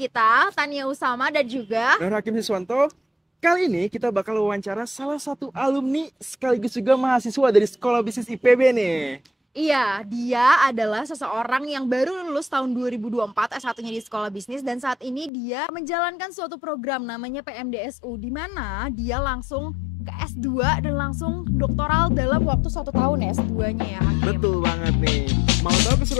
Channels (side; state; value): right; drops out; at 15.3 s